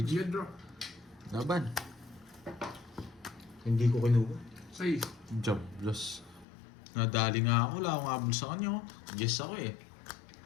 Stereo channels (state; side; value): drops out; right; at 6.5 s